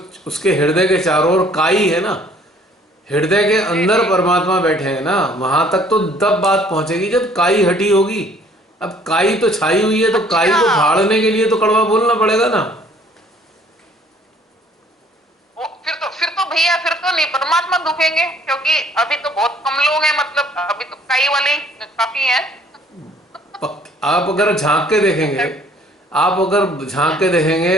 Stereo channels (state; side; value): normal; both; correlation 0.58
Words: उसके हृदय के चारों ओर काई है ना, हृदय के जी अंदर जी। परमात्मा बैठे हैं ना, वहां तक तो तब बात पहुंचेगी जब काई हटी होगी। अब काई तो छाई हुई है, तो काई अच्छा, को फाड़ने के लिए तो कड़वा बोलना पड़ेगा ना। वो फिर तो भैया फिर तो नहीं परमात्मा दुखेंगे, क्योंकि अभी तो बहुत कम लोग हैं, मतलब अभी तो कई वाले ही काफी हैं। आप अगर झांक के देखेंगे, आप अगर झांक के